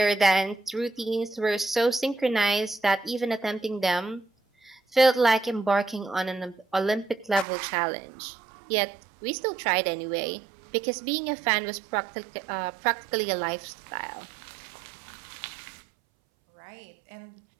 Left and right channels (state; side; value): drops out; left; at 7.5 s